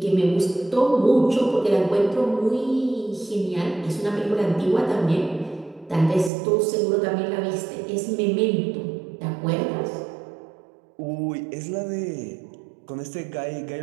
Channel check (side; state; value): left; drops out; at 6.3 s